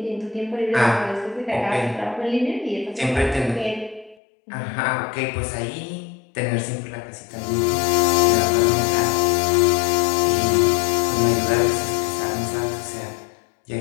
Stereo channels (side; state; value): right; drops out; at 4.2 s